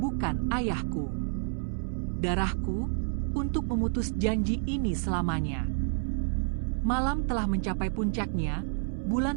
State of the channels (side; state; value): left; silent; 58 dB below the other